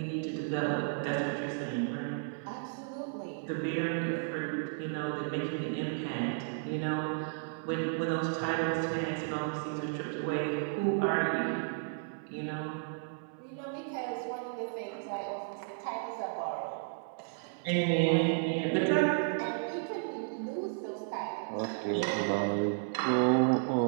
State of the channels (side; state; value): left; silent; 56 dB below the other